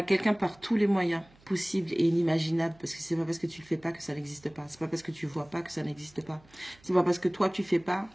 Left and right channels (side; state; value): right; noise; hum, 28 dB below the sound